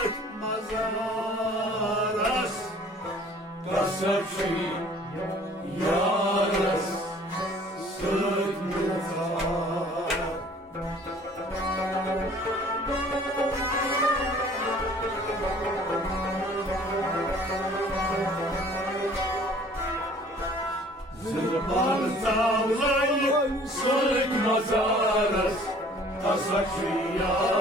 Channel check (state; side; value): normal; both; correlation 0.52